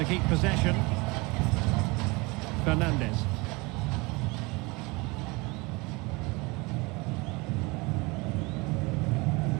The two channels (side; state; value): left; quieter; 25.5 dB